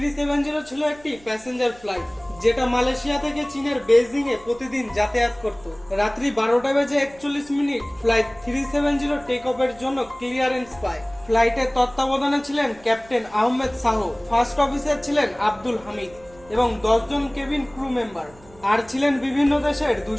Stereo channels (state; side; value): noise; right; hum, 25 dB below the sound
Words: ছিল একটি প্যাসেঞ্জার ফ্লাইট, যেটা মালয়েশিয়া থেকে চীনের বেইজিং এ প্রতিদিন যাতায়াত করত। রাত্রি 12:41 ফ্লাইট 370 টেক অফের জন্য ক্লিয়ারেন্স পায়। ফ্লাইটের তত্ত্বাবধানে ছিলেন captain Ahmed Shah, first officer ছিলেন আব্দুল হামিদ এবং 10 জন কেবিন ক্রু মেম্বার, আর ছিলেন বিভিন্ন দেশের